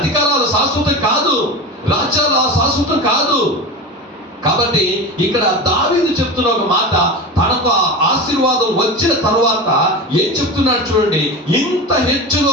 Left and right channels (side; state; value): both; normal; correlation 0.26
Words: శాశ్వతం కాదు, రాజ్యాలు శాశ్వతం కాదు. కాబట్టి ఇక్కడ దావీదు చెప్తున్న ఒక మాట, తనకు ఆశీర్వాదం వచ్చిన తర్వాత ఏం చెప్తున్నాడు చూడండి, ఇంత